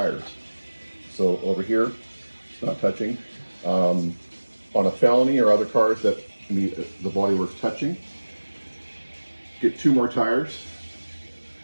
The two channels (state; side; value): inverted; both; correlation -1.00